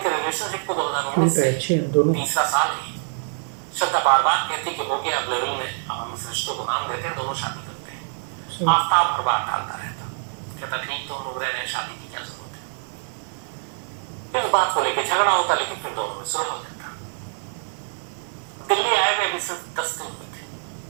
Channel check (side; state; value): left; silent; digital silence